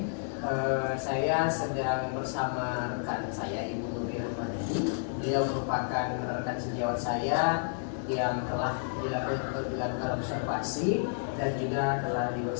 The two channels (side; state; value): right; silent; digital silence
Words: saya sedang bersama rekan saya, Ibu Nuri Rahmadani. Beliau merupakan rekan sejawat saya yang telah dilakukan observasi dan juga telah